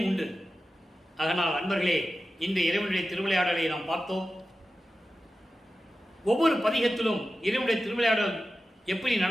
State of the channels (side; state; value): both; normal; correlation 0.93